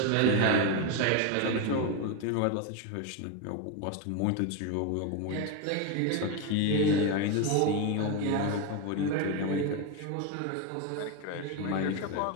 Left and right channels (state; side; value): different; both; correlation 0.02